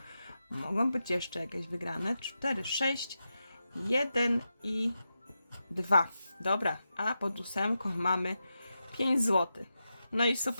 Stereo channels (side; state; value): both; inverted; correlation -0.89